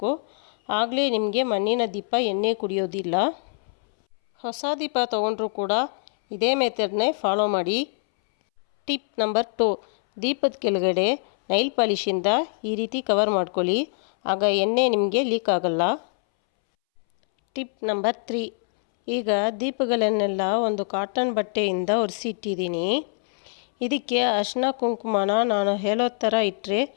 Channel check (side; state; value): right; silent; 62 dB below the other